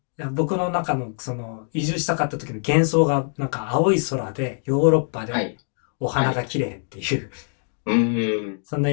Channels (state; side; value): silent; right; 55 dB below the other